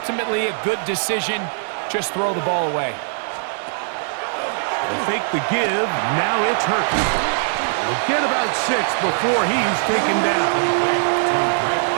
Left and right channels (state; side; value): silent; left; digital silence